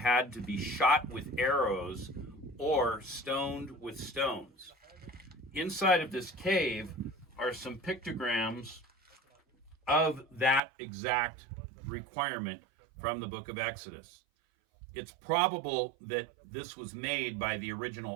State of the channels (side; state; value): left; drops out; at 10.6 s